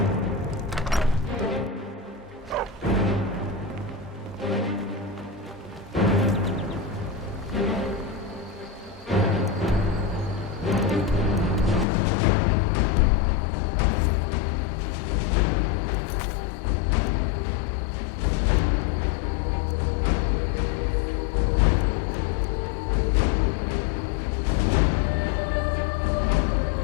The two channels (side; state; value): right; drops out; at 11.9 s